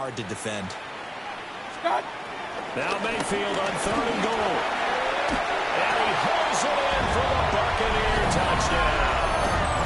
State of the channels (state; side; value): identical; both; correlation 1.00